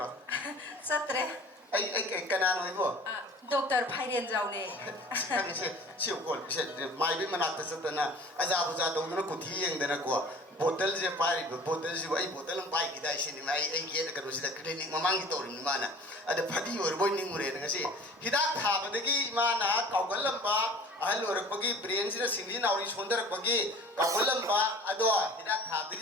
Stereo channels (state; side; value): normal; both; correlation 0.45